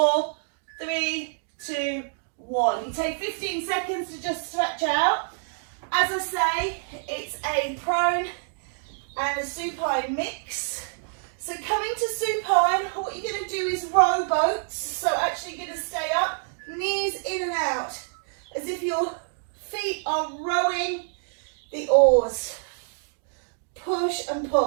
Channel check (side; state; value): left; silent; digital silence